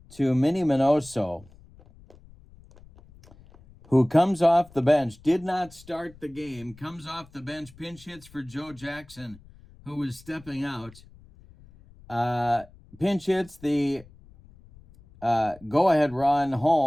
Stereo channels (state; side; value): noise; left; rumble, 24 dB below the sound